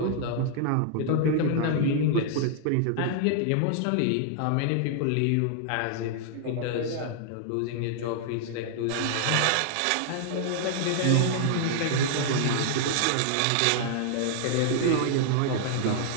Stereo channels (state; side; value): different; both; correlation -0.01